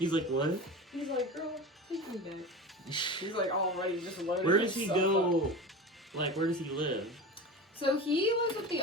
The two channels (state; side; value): normal; both; correlation 0.29